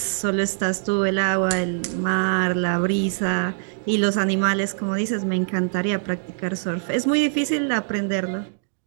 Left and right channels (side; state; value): left; silent; digital silence